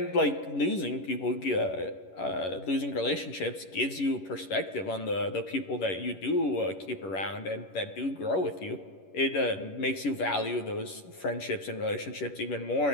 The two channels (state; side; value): late; right; 11 ms